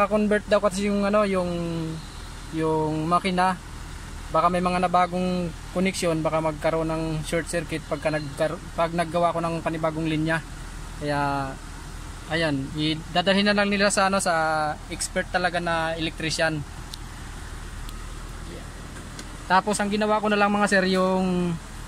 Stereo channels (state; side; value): identical; both; correlation 1.00